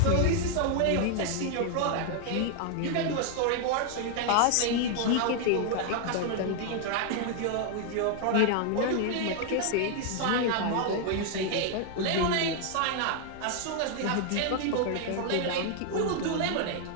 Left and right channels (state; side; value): different; both; correlation 0.00